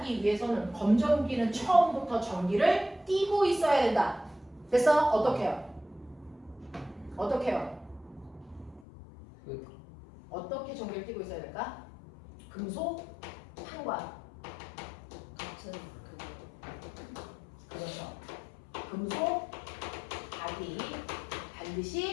위해서는 검전기는 처음부터 전기를 띠고 있어야 된다. 됐어? 어떻게 해요? 어떻게 해요? 어떻게 전기를 띠고 있어야 될까? 금속 판과 같은 그렇죠. 금속 박이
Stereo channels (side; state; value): right; drops out; at 8.8 s